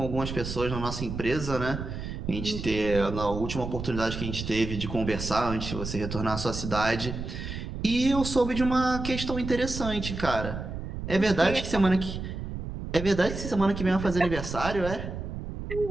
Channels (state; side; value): noise; right; rumble, 7 dB below the sound